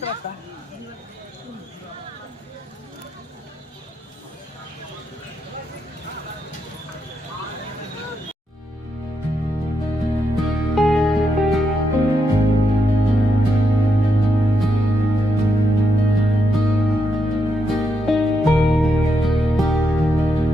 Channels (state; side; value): normal; both; correlation 0.82